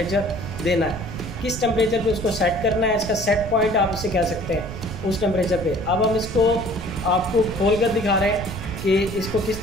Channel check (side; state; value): right; noise; rumble, 9 dB below the sound